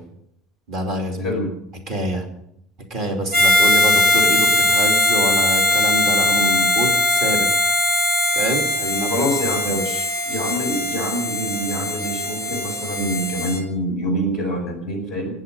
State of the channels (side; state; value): both; normal; correlation 0.45